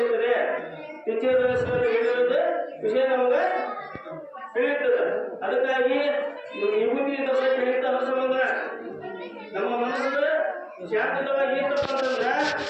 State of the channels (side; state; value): both; identical; correlation 1.00